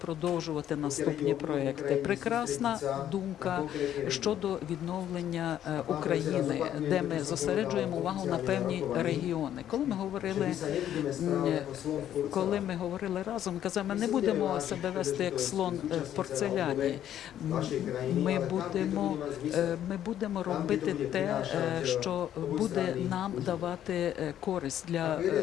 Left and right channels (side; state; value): right; quieter; 11.0 dB